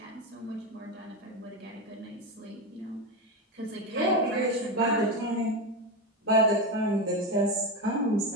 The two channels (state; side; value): normal; both; correlation 0.15